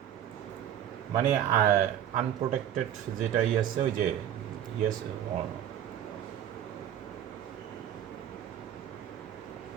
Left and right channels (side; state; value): left; quieter; 10.3 dB